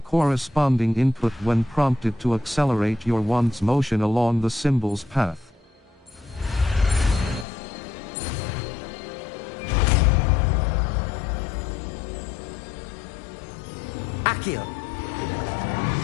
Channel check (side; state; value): right; drops out; at 7.5 s